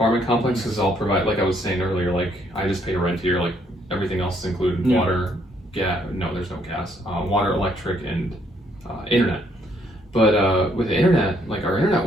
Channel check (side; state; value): both; normal; correlation 0.69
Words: complex is all provided, like I was saying earlier, like I just pay rent here, like everything else is included, water, gas, no, there's no gas, water, electric, and internet. But with the internet, like our internet